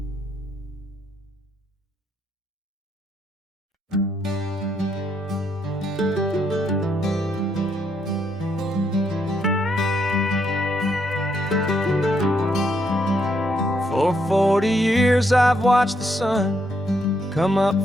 For 40 years I've watched the sun come up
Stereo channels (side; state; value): both; normal; correlation 0.75